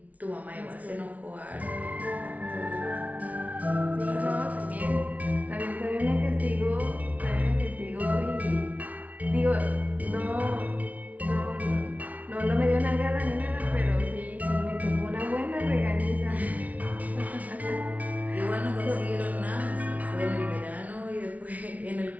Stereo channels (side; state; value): left; late; 0.070 ms